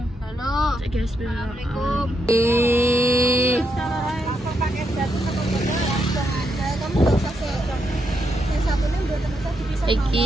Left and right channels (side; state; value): both; normal; correlation 0.80